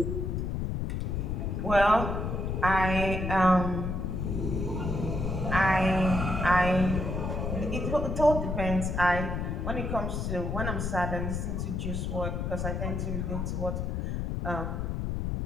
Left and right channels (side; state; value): left; noise; rumble, 1 dB below the sound